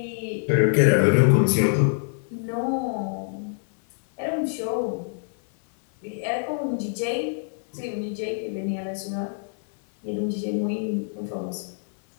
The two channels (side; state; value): right; silent; 59 dB below the other